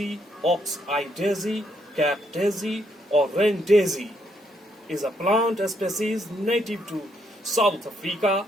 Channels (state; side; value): normal; both; correlation 0.74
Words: ox-eye daisy, Cape daisy or rain daisy, is a plant species native to South Africa